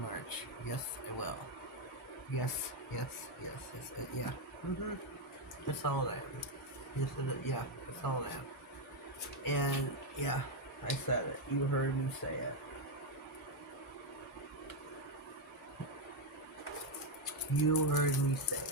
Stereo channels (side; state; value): both; normal; correlation 0.04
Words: Yes, I will. Yes. Yeah. That's how old I am. Yes, yeah, that's how old I am. And, yeah, I said it. You heard me say it. You heard me say